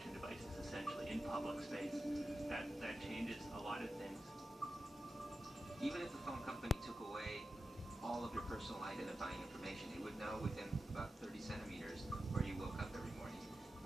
devices essentially in public space, that changes a lot of things. Even if the phone company took away all of your personal identifying information, it would know within about 30 centimeters where you woke up every morning,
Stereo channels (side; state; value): both; normal; correlation 0.91